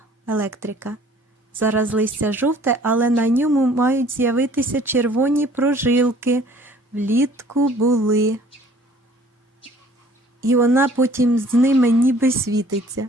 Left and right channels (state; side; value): normal; both; correlation 0.54